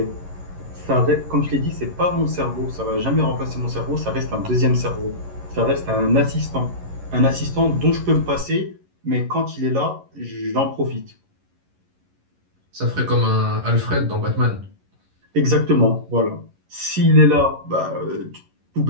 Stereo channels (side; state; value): left; late; 11 ms